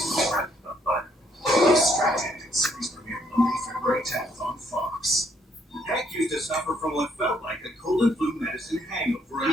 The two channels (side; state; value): both; normal; correlation 0.70